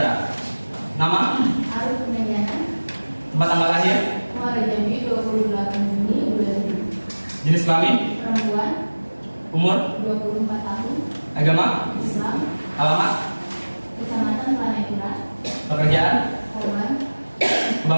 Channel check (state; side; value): inverted; both; correlation -1.00